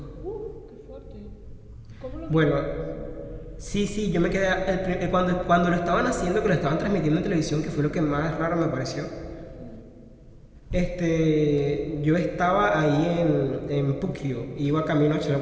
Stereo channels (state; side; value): identical; both; correlation 1.00